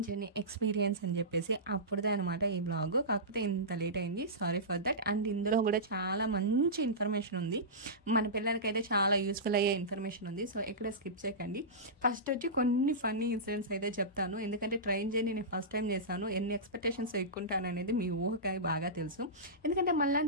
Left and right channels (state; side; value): normal; both; correlation -0.18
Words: journey experience అని చెప్పేసి, అప్పుడుదే అనమాట ఈ బ్లాగ్. కాకపోతే ఇంత లేట్ అయింది, సారీ ఫర్ దట్. అండ్ ఇందులో కూడా చాలా మంచి ఇన్ఫర్మేషన్ ఉంది, మన పిల్లలకైతే చాలా యూస్ఫుల్ అయ్యే ఇన్ఫర్మేషన్ ఉంది. సో ఎక్కడ స్కిప్ చేయకండి. ఫస్ట్ వచ్చి కొన్ని ఫన్నీ ఇన్సిడెంట్స్ అయితే చెప్తాను, ఎందుకంటే ట్రైన్ జర్నీ నేను ఫస్ట్ టైం చేశాను. ఎన్ని ఎక్స్పెక్టేషన్స్ ఎక్కుంటాను అనేది మీ ఊహకాయ బాగా తెలుసు. ఎందుకంటే మళ్ళీ